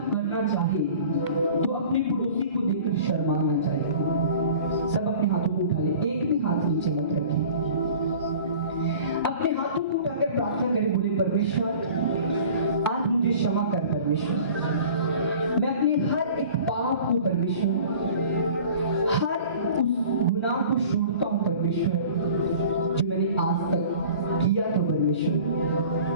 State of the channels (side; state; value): both; inverted; correlation -0.45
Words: करना चाहे तो अपने पड़ोसी को देखकर शर्मा ना चाहे। सब अपने हाथों को उठा ले, एक भी हाथ नीचे मत रखें। अपने हाथों को उठाकर प्रार्थना करें, बोले परमेश्वर आज मुझे क्षमा कर परमेश्वर, मैं अपने हर एक पाप को परमेश्वर, हर उस गुनाह को छोड़ता हूं परमेश्वर जो मैंने आज तक किया था परमेश्वर।